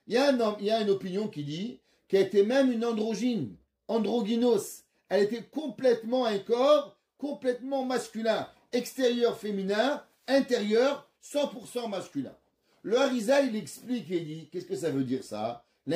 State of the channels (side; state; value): both; identical; correlation 1.00